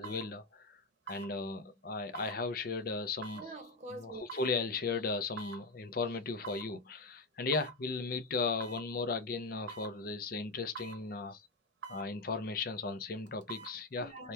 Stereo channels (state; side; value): quieter; right; 3.3 dB